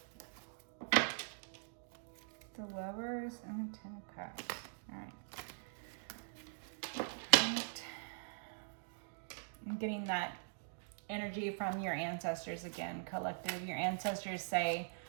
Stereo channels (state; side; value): silent; left; digital silence